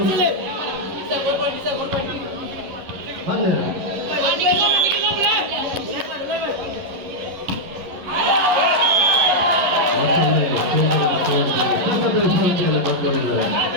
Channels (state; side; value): late; left; 11 ms